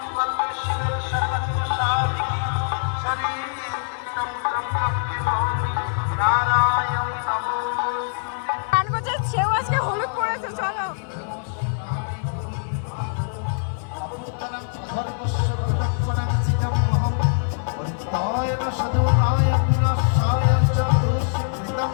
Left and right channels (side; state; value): right; silent; 63 dB below the other